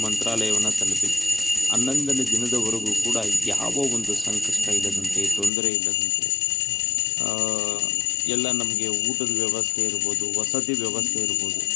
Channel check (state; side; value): drops out; right; at 5.5 s